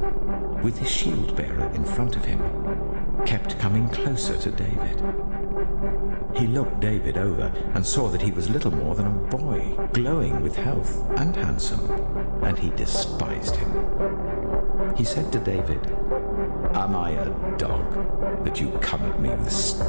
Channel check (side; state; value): both; inverted; correlation -1.00